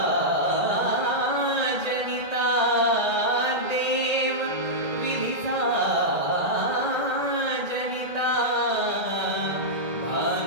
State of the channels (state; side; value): late; left; 1.8 ms